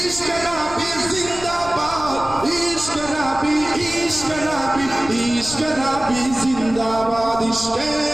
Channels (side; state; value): left; noise; rumble, 14 dB below the sound